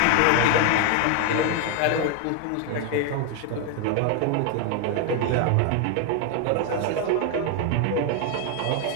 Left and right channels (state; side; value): different; both; correlation 0.01